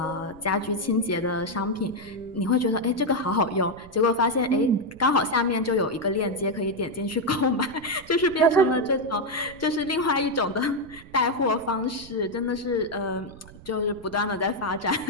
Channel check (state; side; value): noise; right; rumble, 20 dB below the sound